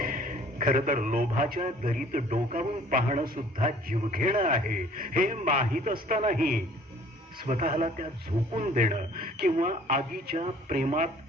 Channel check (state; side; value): normal; both; correlation 0.54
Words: खर तर लोभाच्या दरीत डोकावून पाहणं सुद्धा जीवघेणं आहे हे माहीत असतानाही स्वतःला त्या झोकून देणं किंवा आगीच्या प्रेमात